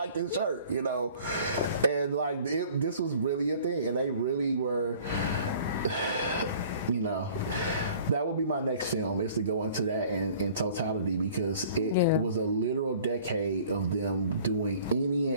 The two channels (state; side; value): inverted; both; correlation -0.50